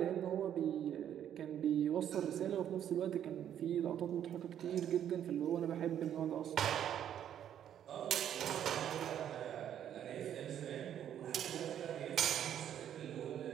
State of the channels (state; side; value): quieter; left; 10.1 dB